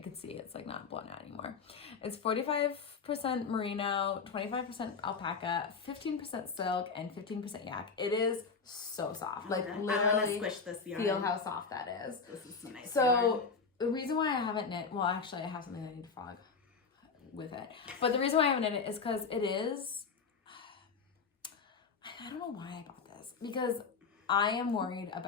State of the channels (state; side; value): quieter; right; 5.2 dB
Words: can see it's like not blown out anymore. It's 45% merino, 25% alpaca, 15% silk, and 15% yak. It is so soft. Like literally, I'm gonna squish this yarn. Feel how soft that is. This is so nice. So yarn. the reason why I haven't knit, well, actually, I have something I need to frog with it. But the reason why I haven't knit it is because it is. I don't know why I bought this, because I am worried